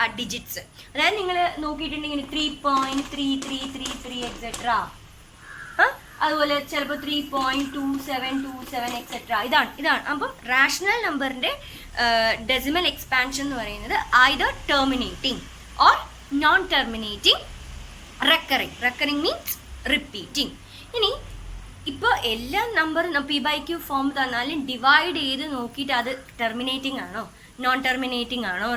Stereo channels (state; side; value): identical; both; correlation 1.00